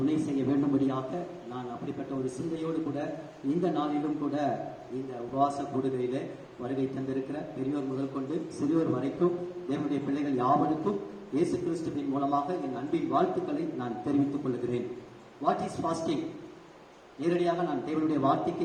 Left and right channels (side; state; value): both; identical; correlation 1.00